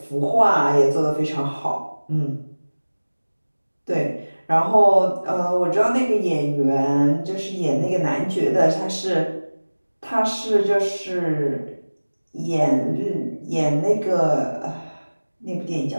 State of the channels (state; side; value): inverted; both; correlation -1.00